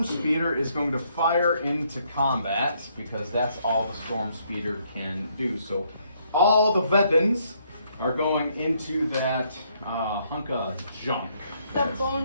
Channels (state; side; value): inverted; both; correlation -0.71